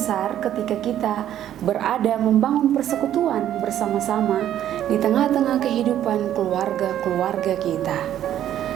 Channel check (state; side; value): quieter; left; 11.3 dB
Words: ketika kita berada membangun persekutuan bersama-sama di tengah-tengah kehidupan keluarga-keluarga kita.